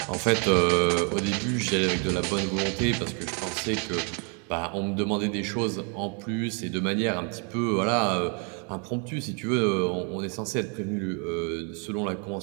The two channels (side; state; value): left; quieter; 37.6 dB